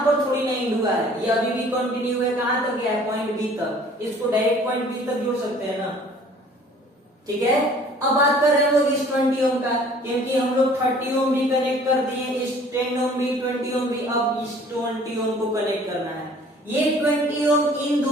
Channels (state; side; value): normal; both; correlation 0.52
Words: पर थोड़ी नहीं जुड़ा है, ये अभी भी कंटिन्यू है, कहां तक गया है? पॉइंट बी तक। इसको डायरेक्ट पॉइंट बी तक जोड़ सकते हैं ना। ठीक है, अब बात कर रहे हैं लोग इस 20 ओम का, क्योंकि हम लोग 30 ओम भी कनेक्ट कर दिए, इस 10 ओम भी, 20 ओम भी, अब इस 20 ओम को कनेक्ट करना है। ये 20 ओम इन